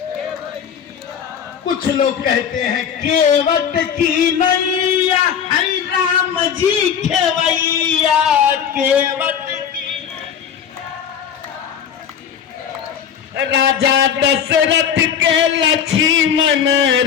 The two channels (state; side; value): quieter; right; 8.1 dB